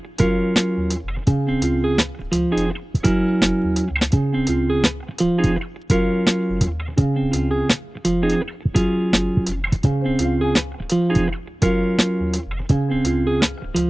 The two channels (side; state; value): both; normal; correlation 0.98